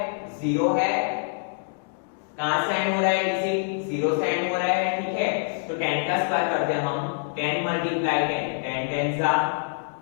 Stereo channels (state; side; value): silent; right; digital silence